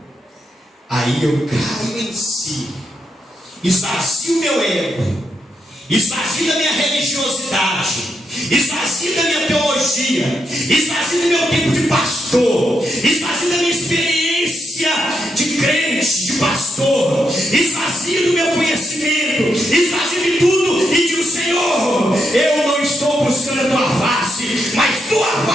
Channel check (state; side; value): normal; both; correlation 0.81